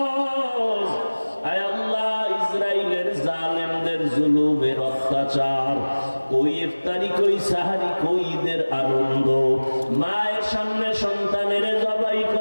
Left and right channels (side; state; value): both; inverted; correlation -1.00